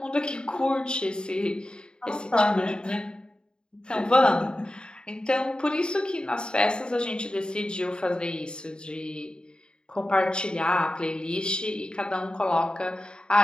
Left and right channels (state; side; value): late; right; 0.050 ms